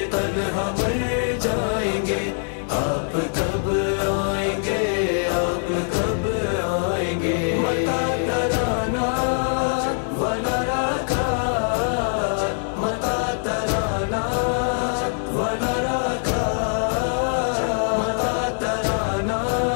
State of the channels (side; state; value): right; silent; 63 dB below the other